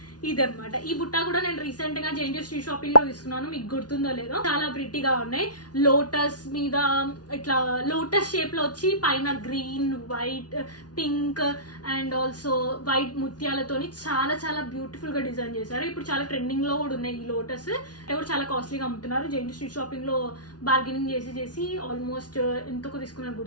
ఇదనమాట. ఈ బుట్ట కూడా నేను రీసెంట్ గా జేఎన్టీ స్ట్రీట్ షాపింగ్ లో తీసుకున్నాను, మీకు గుర్తుందో లేదో. చాలా ప్రిట్టిగా ఉన్నాయి. లోటస్ మీద ఇట్లా లోటస్ షేప్ లో వచ్చి పైన green, white, pink and also white ముత్యాలతోని చాలా చాలా బ్యూటిఫుల్ గా డిజైన్ చేశారు. ఇప్పుడు చాలా ట్రెండింగ్ లో కూడా ఉన్నాయి ఈ లోటస్. కూడా చాలా కాస్ట్లీగా అమ్ముతున్నారు. జేఎన్టీ స్ట్రీట్ షాపింగ్ లో బార్గెనింగ్ చేసి ఆల్మోస్ట్ ఎంతకు తీసుకున్నారు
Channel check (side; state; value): right; late; 0.69 ms